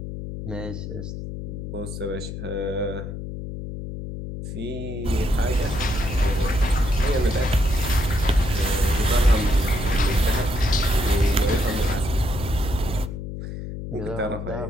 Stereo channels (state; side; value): noise; left; hum, 7 dB below the sound